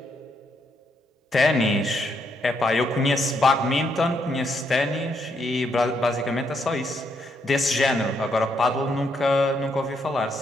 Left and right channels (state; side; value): normal; both; correlation 0.76